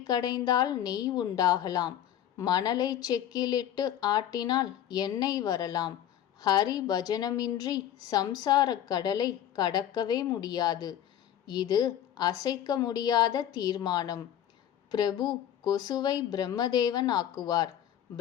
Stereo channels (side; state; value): right; quieter; 10.8 dB